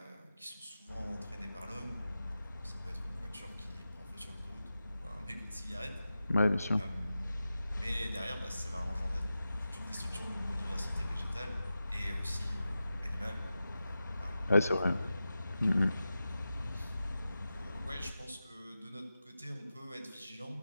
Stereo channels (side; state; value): both; inverted; correlation -0.93